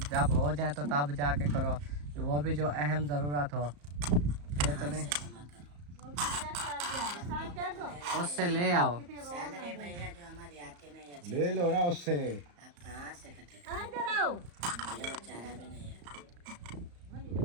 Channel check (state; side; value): late; left; 34 ms